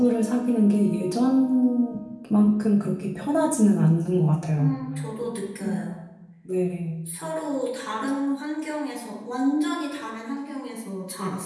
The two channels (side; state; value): both; identical; correlation 1.00